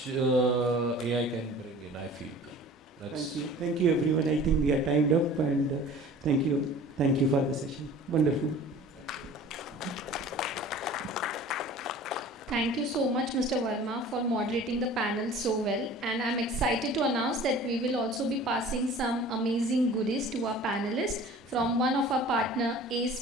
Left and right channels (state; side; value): normal; both; correlation 0.44